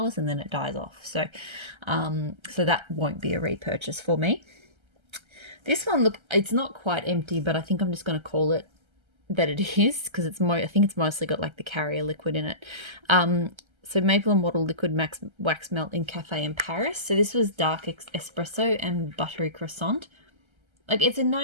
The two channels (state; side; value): late; left; 1.3 ms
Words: and then it dies off. So so that won't be a repurchase for me. This one, look, it's not quite empty, but I think I'm just going to call it that it is because I think it's mostly got like the carrier liquid in it. So Maple and Wattle Liquid Wax Melt in Cafe in Paris. So this was dark espresso and buttery croissant. Like it's a